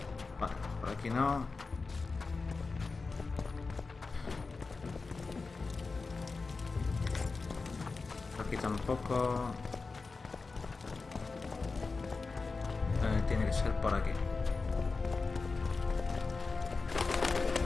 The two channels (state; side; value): quieter; right; 4.1 dB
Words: Vale, por aquí no. Por aquí tampoco. Tiene que ser por aquí.